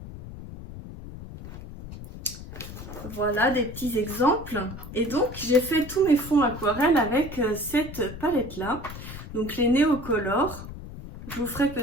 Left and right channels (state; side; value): noise; left; rumble, 12 dB below the sound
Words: Voilà des petits exemples. Et donc j'ai fait tous mes fonds aquarelles avec cette palette là. Donc les Neocolor. Je vous ferai